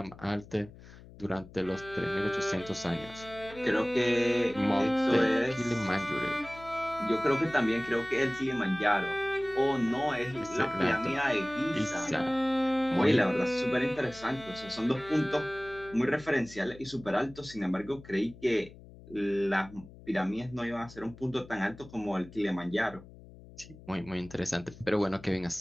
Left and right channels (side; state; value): left; noise; hum, 19 dB below the sound